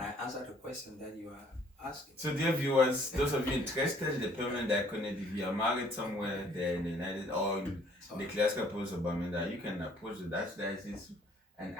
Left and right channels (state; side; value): normal; both; correlation 0.60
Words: I answer the question that you are asking? So dear viewers, those of you interested in the permanent diaconate, if you are married somewhere there in the United or in the classical province of Bamenda, you can approach the Archdiocese